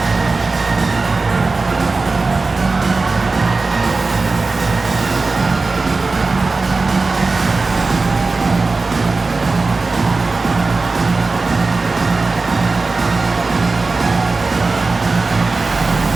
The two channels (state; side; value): quieter; left; 3.8 dB